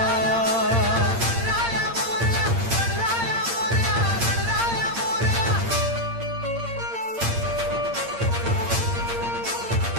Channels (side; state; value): left; late; 8.7 ms